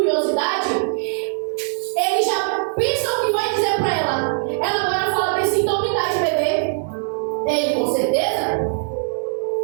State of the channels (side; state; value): left; silent; 61 dB below the other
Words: ele já pensa o que vai dizer para ela. Ela agora fala assim, então me dá de beber. Ele, com certeza.